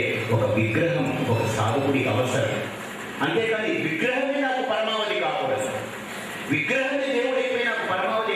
ఒక విగ్రహం, ఒక సాధకుడికి అవసరం. అంతేకాని విగ్రహమే నాకు పరమావధి కాకూడదు. విగ్రహమే దేవుడైపోయి నాకు పరమావధి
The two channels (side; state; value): both; identical; correlation 1.00